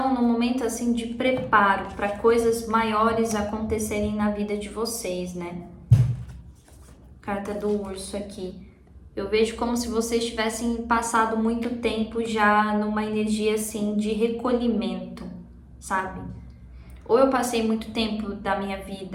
num momento assim de preparo para coisas maiores acontecerem na vida de vocês, né? Carta do urso aqui. Eu vejo como se vocês tivessem passado muito tempo já numa energia assim de recolhimento, sabe? Ou eu passei muito tempo da minha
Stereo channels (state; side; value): identical; both; correlation 1.00